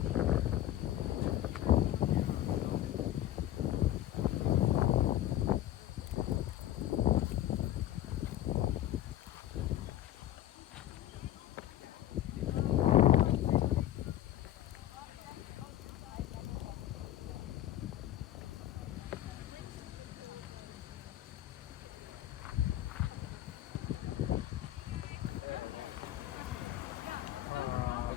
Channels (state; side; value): quieter; right; 13.0 dB